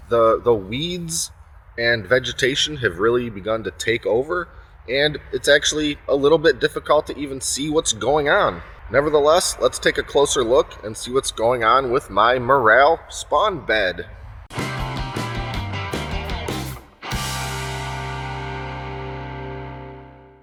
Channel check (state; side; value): identical; both; correlation 1.00